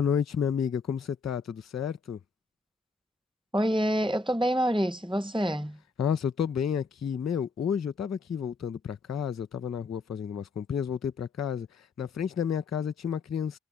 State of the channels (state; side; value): quieter; right; 3.9 dB